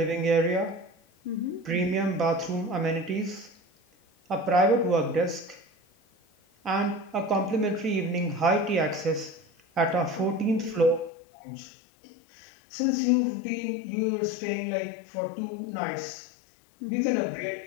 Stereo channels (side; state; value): right; drops out; at 11.1 s